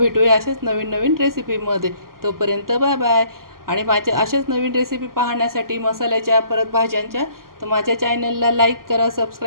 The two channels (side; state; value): left; late; 0.92 ms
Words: अशाच नवीन नवीन रेसिपीमध्ये. तोपर्यंत बाय बाय. आणि माझ्या अशाच नवीन रेसिपी पाहण्यासाठी मसाल्याच्या परत भाज्यांच्या तर माझ्या चॅनलला लाईक करा,